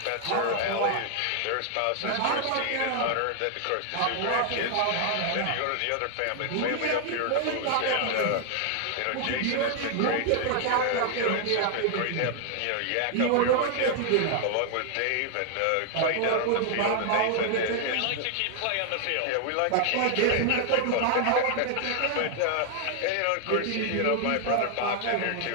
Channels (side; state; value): both; different; correlation 0.00